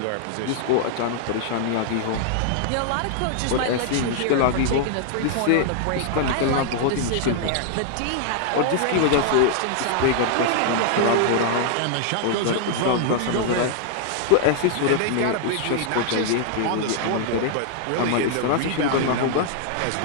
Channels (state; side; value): different; both; correlation 0.00